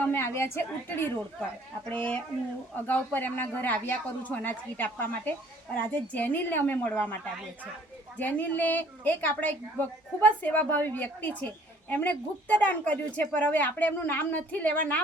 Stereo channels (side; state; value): both; normal; correlation 0.57